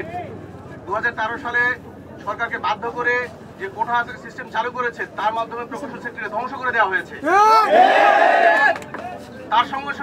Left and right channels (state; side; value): identical; both; correlation 1.00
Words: 2013 সালে সরকারকে বাধ্য করে যে কোটা সিস্টেম চালু করেছে, তার মাধ্যমে প্রকৌশল সেক্টরে ধ্বংস করে দেওয়া হয়েছে। তার সঙ্গে